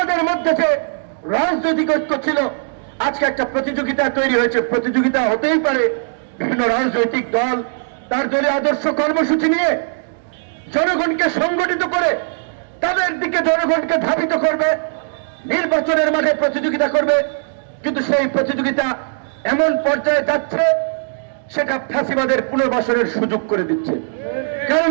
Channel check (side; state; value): left; silent; digital silence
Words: মধ্যে যে রাজনৈতিক ঐক্য ছিল, আজকে একটা প্রতিযোগিতা তৈরি হয়েছে। প্রতিযোগিতা হতেই পারে বিভিন্ন রাজনৈতিক দল তার দলীয় আদর্শ কর্মসূচি নিয়ে জনগণকে সংগঠিত করে তাদের দিকে জনগণকে ধাবিত করবে, নির্বাচনের মাঠে প্রতিযোগিতা করবে। কিন্তু সেই প্রতিযোগিতা এমন পর্যায়ে যাচ্ছে সেটা ফ্যাসিবাদের পুনর্বাসনের সুযোগ করে দিচ্ছে। কারণ